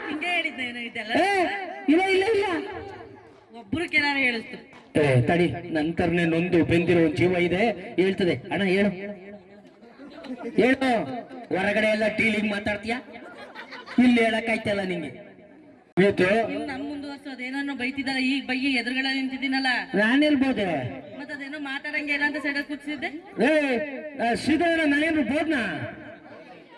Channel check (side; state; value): both; identical; correlation 1.00